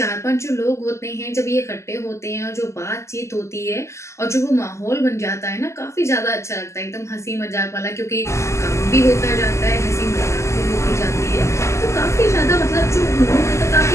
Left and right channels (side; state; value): right; late; 0.13 ms